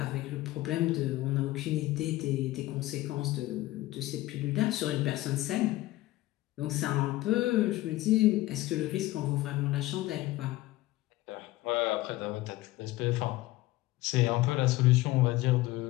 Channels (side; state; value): right; quieter; 17.5 dB